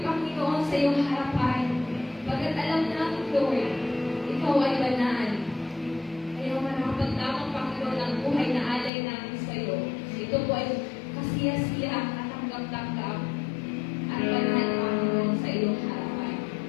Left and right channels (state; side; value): drops out; right; at 8.9 s